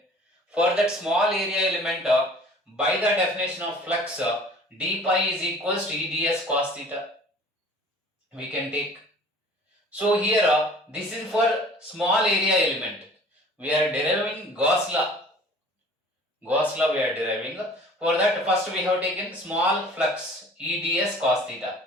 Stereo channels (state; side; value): normal; both; correlation 0.48